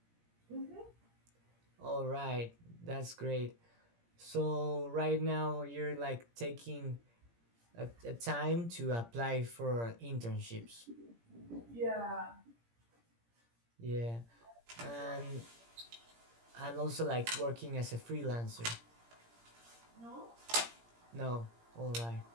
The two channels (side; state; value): left; late; 17 ms